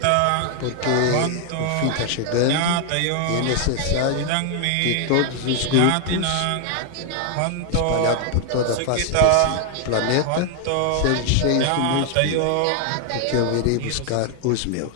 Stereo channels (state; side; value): different; both; correlation 0.00